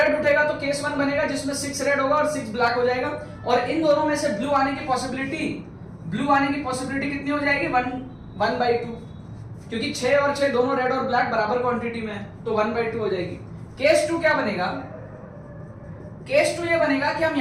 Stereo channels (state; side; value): identical; both; correlation 1.00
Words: उठेगा तो केस 1 बनेगा जिसमें 6 रेड होगा और 6 ब्लैक हो जाएगा, और इन दोनों में से ब्लू आने की पॉसिबिलिटी कितनी हो जाएगी, 1/2, क्योंकि 6 और 6 दोनों रेड और ब्लैक बराबर क्वांटिटी में है, तो 1/2 हो जाएगी। केस 2 क्या बनेगा, केस 2 ये बनेगा कि हम